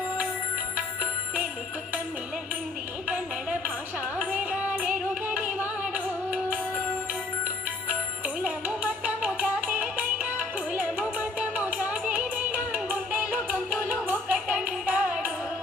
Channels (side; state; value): right; quieter; 3.3 dB